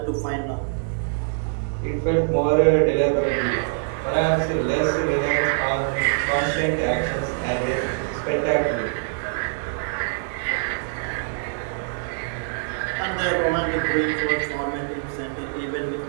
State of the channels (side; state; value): left; silent; digital silence